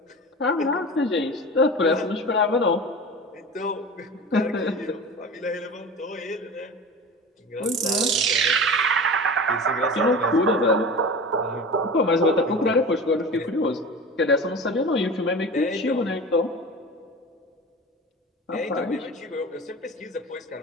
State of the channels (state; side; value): normal; both; correlation 0.34